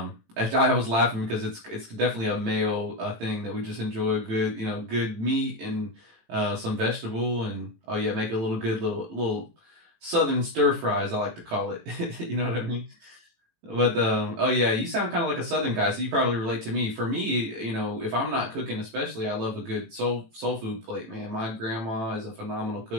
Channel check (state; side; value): late; left; 18 ms